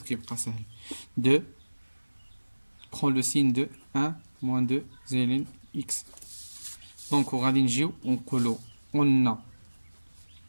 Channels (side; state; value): both; inverted; correlation -1.00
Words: كيبقى سهل de prend le signe de 1 moins 2 زائد x. دونك وغادي نجيو ونقولو قلنا